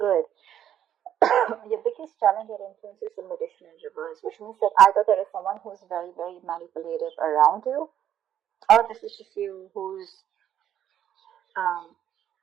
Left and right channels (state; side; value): quieter; left; 10.4 dB